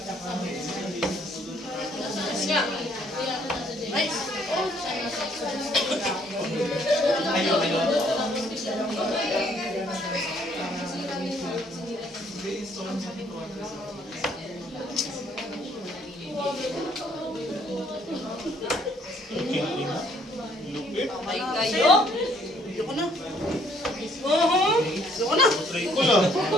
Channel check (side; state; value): both; normal; correlation 0.64